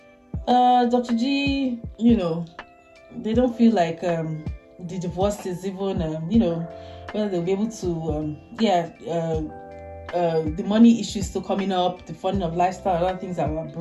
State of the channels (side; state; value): both; identical; correlation 1.00